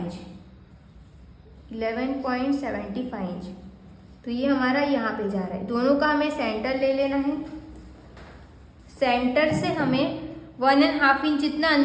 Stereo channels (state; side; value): identical; both; correlation 1.00